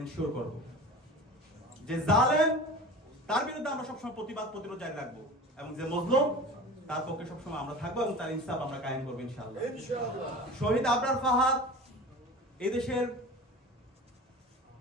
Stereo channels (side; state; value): both; normal; correlation 0.36